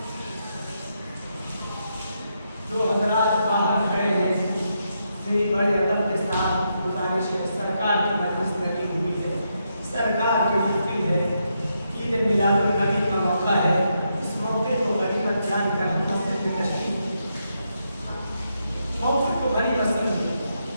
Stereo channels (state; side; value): inverted; both; correlation -0.81